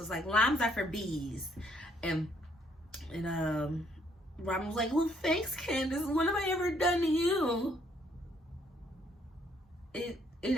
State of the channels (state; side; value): normal; both; correlation 0.67